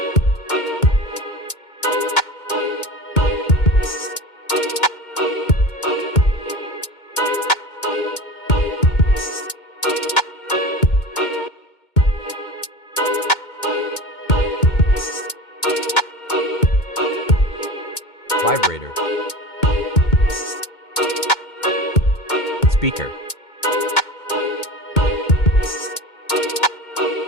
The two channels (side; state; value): right; late; 2.2 ms